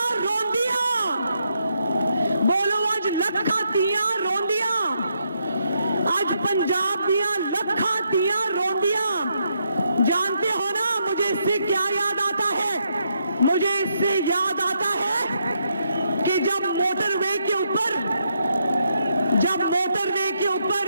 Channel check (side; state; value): both; inverted; correlation -0.78